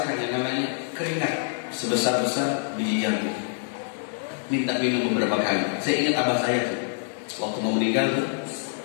yang namanya keringat sebesar-besar biji jambu. Minta minum beberapa kali. Saya ingat abah saya tuh, waktu mau meninggal tuh,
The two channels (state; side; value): silent; right; digital silence